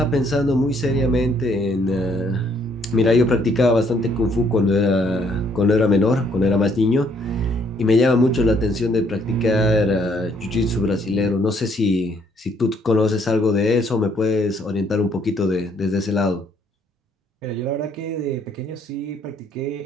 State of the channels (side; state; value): both; normal; correlation 0.67